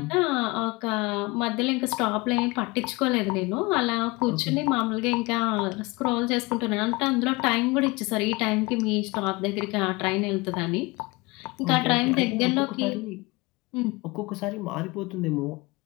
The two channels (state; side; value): quieter; right; 24.2 dB